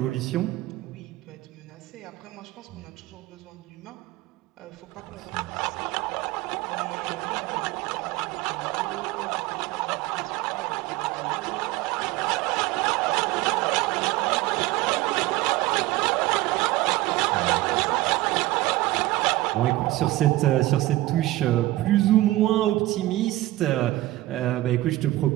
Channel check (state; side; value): quieter; left; 17.4 dB